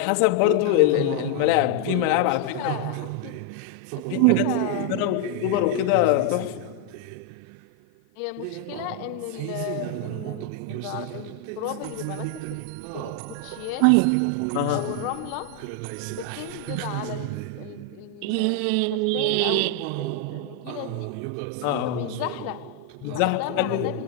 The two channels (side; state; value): both; different; correlation 0.01